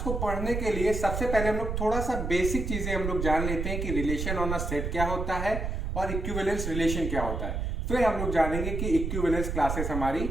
को पढ़ने के लिए सबसे पहले हम लोग थोड़ा सा बेसिक चीजें हम लोग जान लेते हैं कि रिलेशन ऑन अ सेट क्या होता है और इक्विवेलेंस रिलेशन क्या होता है। फिर हम लोग जानेंगे कि इक्विवेलेंस क्लासेस हमारी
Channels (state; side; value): noise; right; rumble, 2 dB below the sound